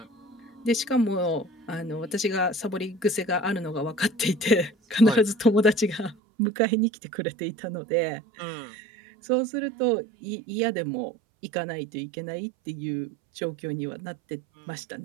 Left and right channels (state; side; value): drops out; left; at 6.2 s